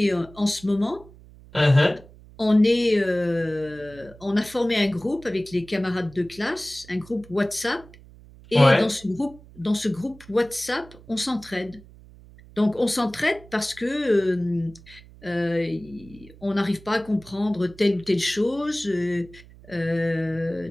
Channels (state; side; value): noise; right; hum, 22 dB below the sound